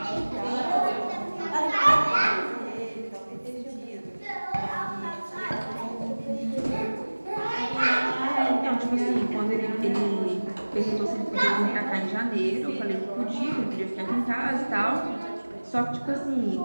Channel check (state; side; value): inverted; both; correlation -1.00